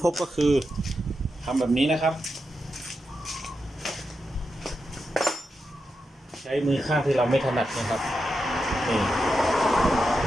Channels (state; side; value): normal; both; correlation 0.87